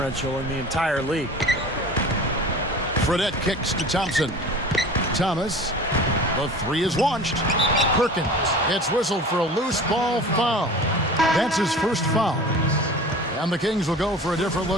in the entire league. Fredette kicks to Thompson. Thomas. The three is launched. Perkins. It's whistled for a loose ball foul. That's his first foul. And the Kings will go for a different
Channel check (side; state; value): both; normal; correlation 0.39